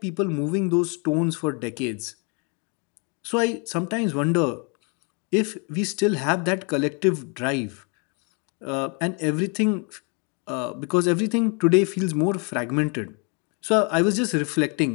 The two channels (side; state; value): right; quieter; 35.4 dB